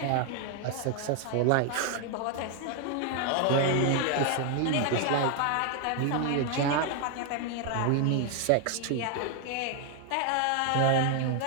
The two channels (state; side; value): different; both; correlation 0.01